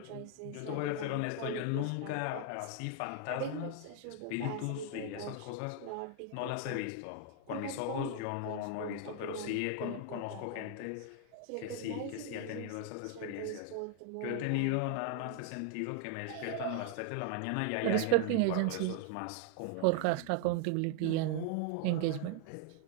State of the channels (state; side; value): different; both; correlation 0.00